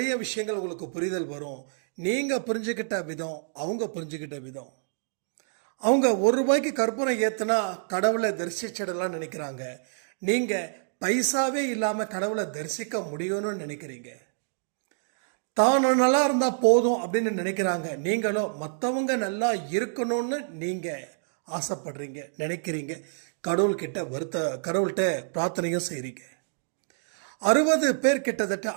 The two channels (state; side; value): silent; left; digital silence